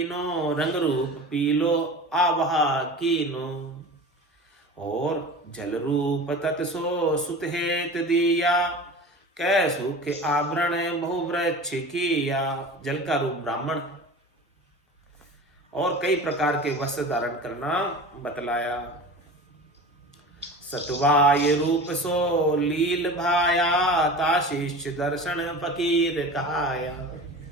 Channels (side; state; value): both; normal; correlation 0.35